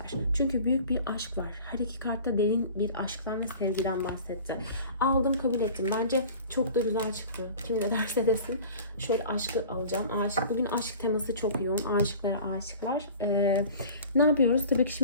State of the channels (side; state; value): both; inverted; correlation -0.42